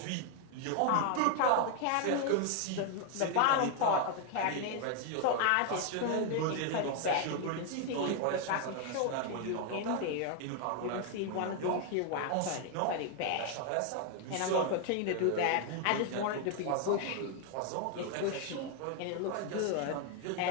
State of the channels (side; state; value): both; different; correlation 0.00